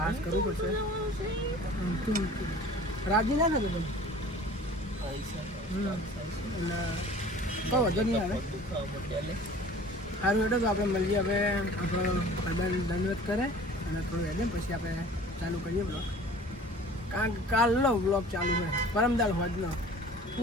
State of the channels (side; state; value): both; normal; correlation 0.46